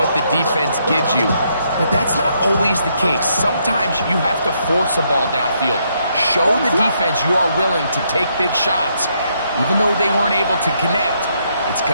the defense gives you. But that's not always the case. Sometimes you have to force a ball downfield. Show the defense you are willing to take big shots. Even though they weren't able to connect, it's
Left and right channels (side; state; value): both; inverted; correlation -0.74